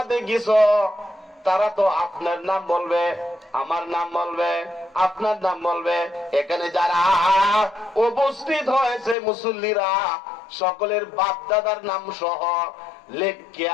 গেছো তারা তো আপনার নাম বলবে, আমার নাম বলবে, আপনার নাম বলবে। এখানে যারা উপস্থিত হয়েছে মুসল্লিরা সকলের বাপ দাদার নাম সহ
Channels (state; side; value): drops out; right; at 9.2 s